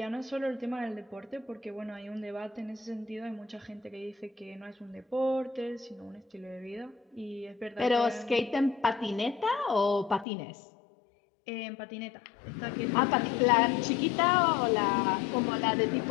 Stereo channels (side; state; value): right; drops out; at 10.2 s